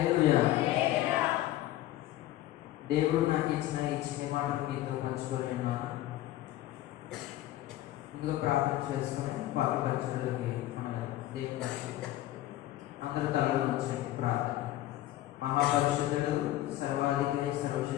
దేవుడు నాకు ఇచ్చిన ఈ చిన్న మాటలు మీతో పంచుకొని ఉన్నాను. ముందుగా ప్రార్థన చేసుకొని వాక్య పరిచయంలోకి మన దేవుని అందరూ తలలో ఉంచండి. ప్రార్థన. మహాపరిశుద్ధుడు, సర్వాధికారి,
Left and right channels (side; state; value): right; quieter; 14.8 dB